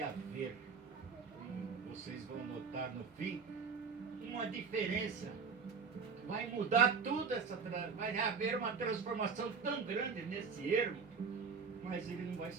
haver, vocês vão notar no fim, uma diferença. Vai mudar tudo vai haver uma transformação tão grande nesse ermo, mas ele não vai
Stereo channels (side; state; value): left; quieter; 5.3 dB